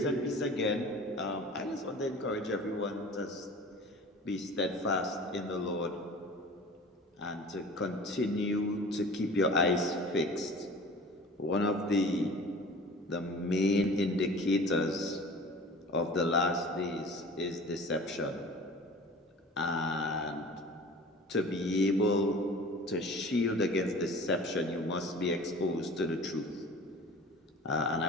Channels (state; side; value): normal; both; correlation 0.42